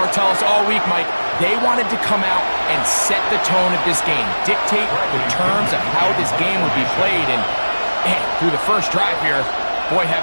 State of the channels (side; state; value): both; inverted; correlation -1.00